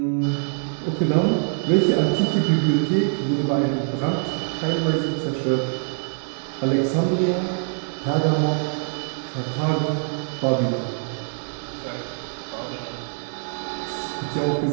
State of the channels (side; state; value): left; silent; digital silence